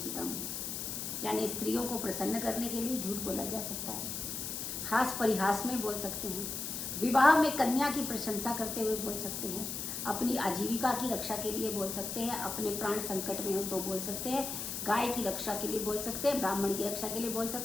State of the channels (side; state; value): left; noise; hiss, 4 dB below the sound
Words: यानी स्त्रियों को प्रसन्न करने के लिए झूठ बोला जा सकता है, हास परिहास में बोल सकते हैं, विवाह में कन्या की प्रशंसा करते हुए बोल सकते हैं, अपनी आजीविका की रक्षा के लिए बोल सकते हैं, अपने प्राण संकट में हो तो बोल सकते हैं, गाय की रक्षा के लिए बोल सकते हैं, ब्राह्मण की रक्षा के लिए बोल